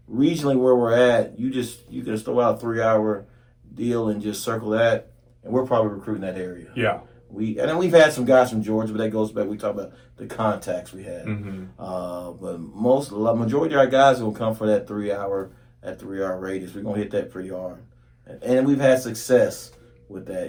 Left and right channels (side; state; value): both; identical; correlation 1.00